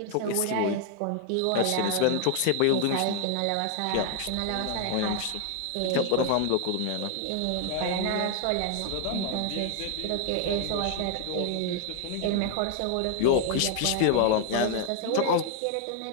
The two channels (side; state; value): both; different; correlation 0.00